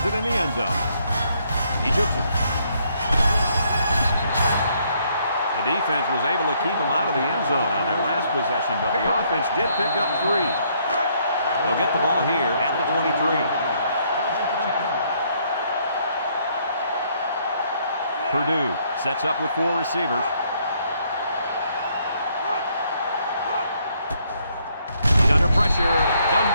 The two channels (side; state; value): both; inverted; correlation -0.69